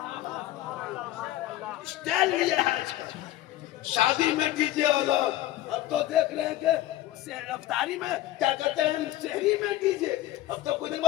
स्टाइल लिया है शादी में डीजे वाला, अब तो देख रहे हैं कि रफ्तारी में क्या कहते हैं, शहरी में डीजे, अब तो कुछ दिन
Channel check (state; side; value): quieter; right; 15.2 dB